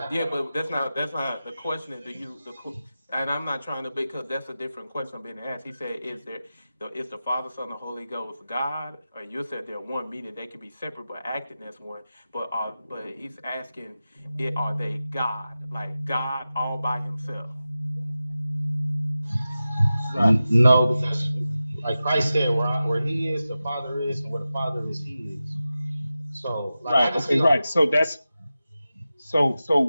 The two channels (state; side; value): inverted; both; correlation -0.94